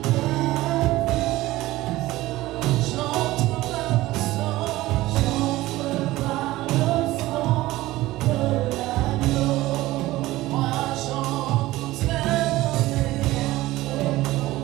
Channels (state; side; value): quieter; left; 17.5 dB